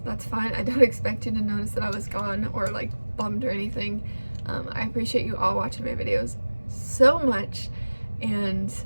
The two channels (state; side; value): inverted; both; correlation -1.00